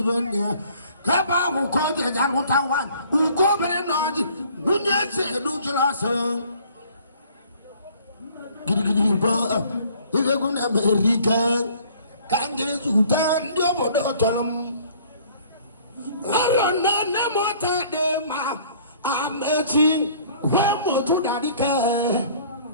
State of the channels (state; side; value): inverted; both; correlation -0.55